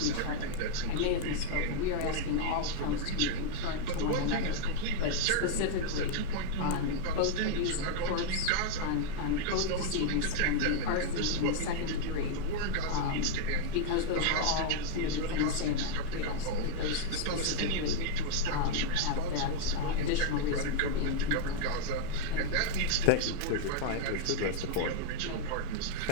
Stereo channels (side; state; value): both; different; correlation 0.00